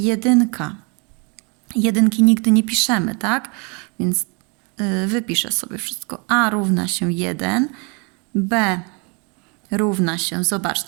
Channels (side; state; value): left; quieter; 32.8 dB